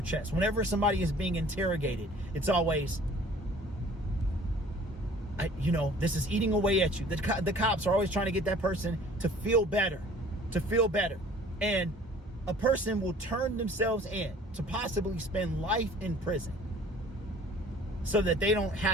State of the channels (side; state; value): both; normal; correlation 0.50